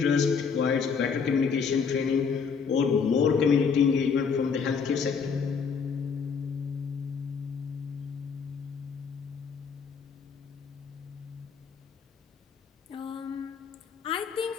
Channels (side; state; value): right; quieter; 5.9 dB